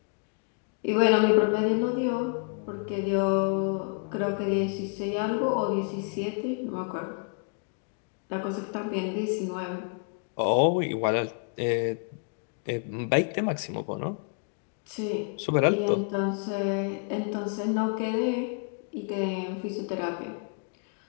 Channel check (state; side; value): quieter; right; 39.3 dB